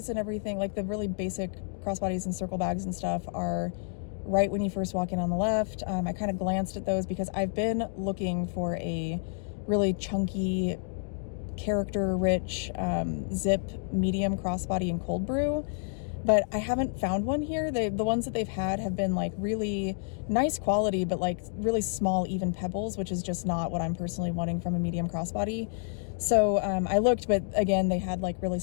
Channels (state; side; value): silent; right; digital silence